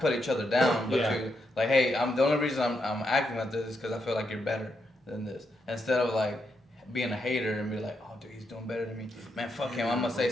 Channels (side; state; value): both; normal; correlation 0.81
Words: put each other down, but to, like, hey, the only reason I'm acting like this is because I feel like you're better than this. Instead of, like, being a hater and be like, oh, dude, he's doing better than me. Man, fuck him. I'm going to say